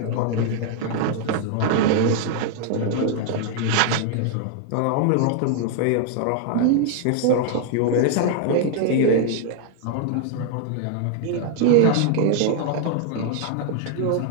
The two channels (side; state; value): both; different; correlation 0.00